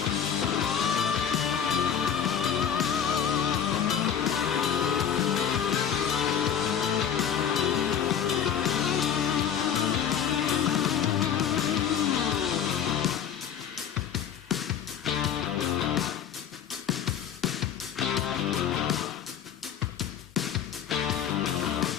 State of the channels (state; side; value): quieter; right; 8.5 dB